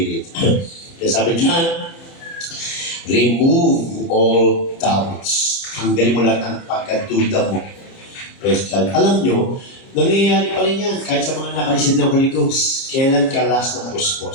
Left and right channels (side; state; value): right; late; 30 ms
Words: Kaya sabi dyan, remove all doubts. Hanggalin mo lahat ng pagkaduda mo. Praise God. Alam nyo, nangyayari pa rin yan kahit sa mga nakareceive ng Holy Ghost. Kailan ka last na